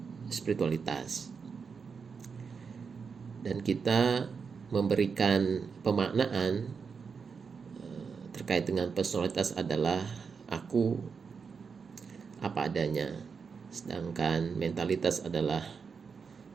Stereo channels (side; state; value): left; quieter; 5.6 dB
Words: spiritualitas. Dan kita memberikan pemaknaan terkait dengan personalitas adalah aku apa adanya, sedangkan mentalitas adalah